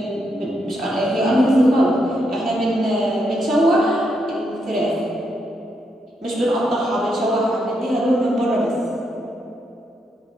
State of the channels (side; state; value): both; normal; correlation 0.80